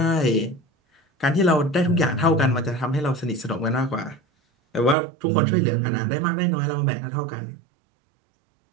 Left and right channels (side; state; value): left; drops out; at 5.0 s